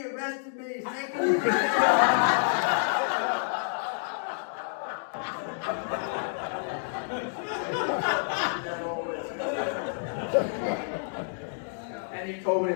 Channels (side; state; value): right; silent; digital silence